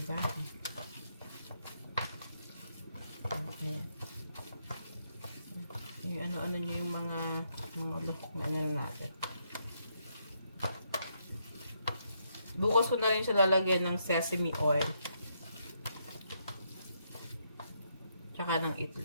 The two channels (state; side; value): inverted; both; correlation -0.76